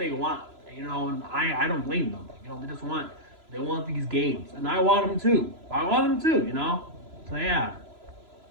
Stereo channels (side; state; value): left; late; 3.0 ms